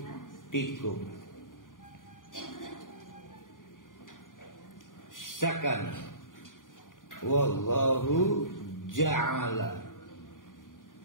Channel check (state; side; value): late; right; 0.89 ms